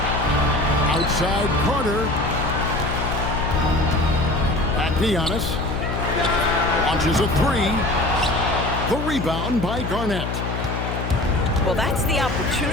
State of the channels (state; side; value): noise; left; hum, 4 dB below the sound